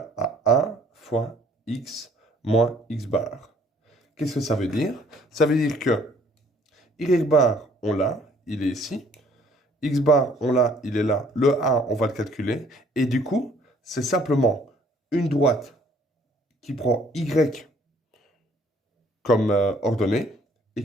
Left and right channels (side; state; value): both; normal; correlation 0.60